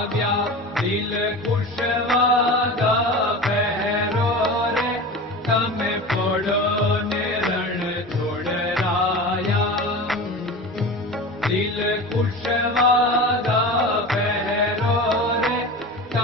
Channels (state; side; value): normal; both; correlation 0.31